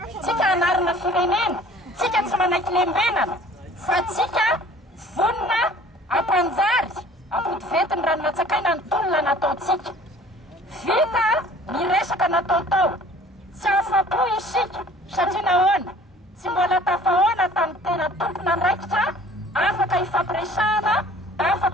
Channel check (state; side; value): normal; both; correlation 0.50